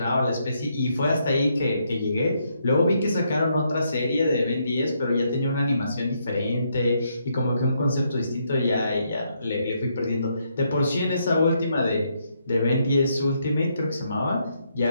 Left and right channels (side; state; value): both; inverted; correlation -0.76